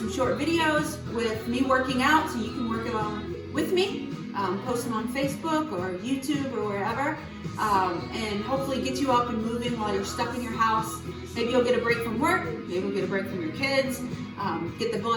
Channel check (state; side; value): identical; both; correlation 1.00